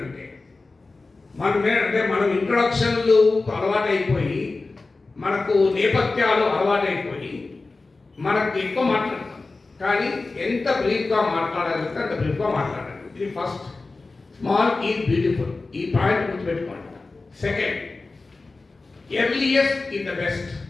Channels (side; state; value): right; quieter; 3.6 dB